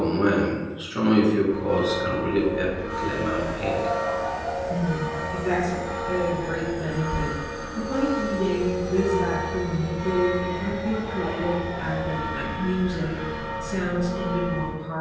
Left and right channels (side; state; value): both; identical; correlation 1.00